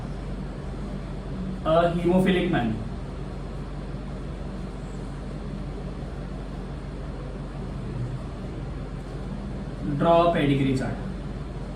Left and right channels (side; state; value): both; identical; correlation 1.00